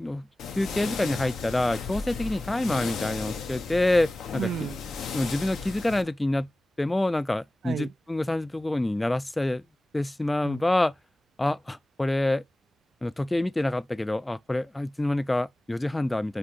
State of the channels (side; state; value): both; normal; correlation 0.97